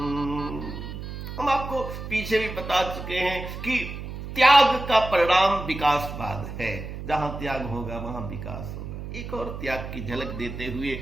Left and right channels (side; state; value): right; noise; hum, 8 dB below the sound